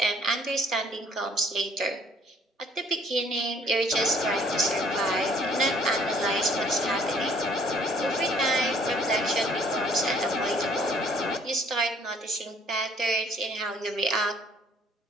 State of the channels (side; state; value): both; normal; correlation 0.59